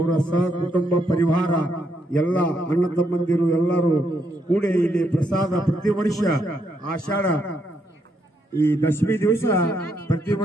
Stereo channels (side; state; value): both; normal; correlation 0.77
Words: ಸಹ ಕುಟುಂಬ ಪರಿವಾರ ಎಲ್ಲ ಅಣ್ಣ ತಮ್ಮಂದಿರು ಎಲ್ಲರೂ ಕೂಡಿ ಇಲ್ಲಿ ಪ್ರಸಾದ ಪ್ರತಿ ವರ್ಷ ಆಷಾಢ ಈ ದಶಮಿ ದಿವಸ ಪ್ರತಿ